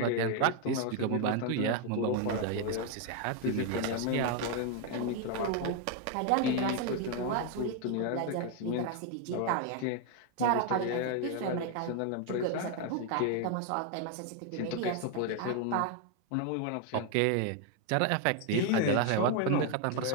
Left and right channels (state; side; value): different; both; correlation 0.01